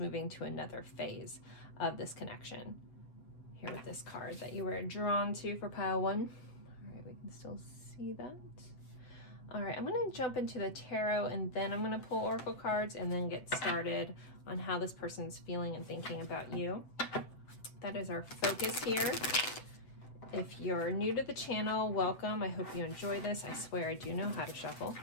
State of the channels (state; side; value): late; right; 7.8 ms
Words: to another phase of this connection. Here with this card that you were drawn to for pile 1. All right, we can still see that. All right, I'm going to jump into the tarot and then I'm going to pull oracle cards and then get started on how this person's feeling and thinking about you. That is our focus here. If you're new to the channel, welcome. I hope you enjoy this. I swear I do know how to shuffle.